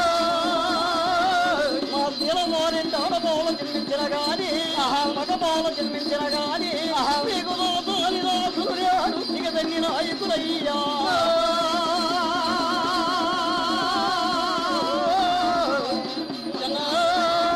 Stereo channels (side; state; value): both; identical; correlation 1.00